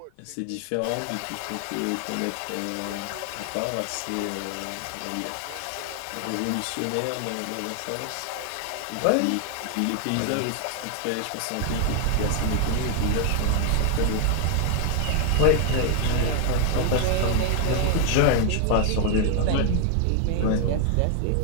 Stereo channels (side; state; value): both; different; correlation 0.00